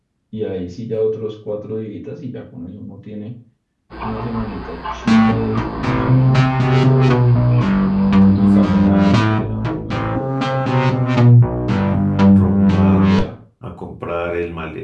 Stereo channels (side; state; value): both; identical; correlation 1.00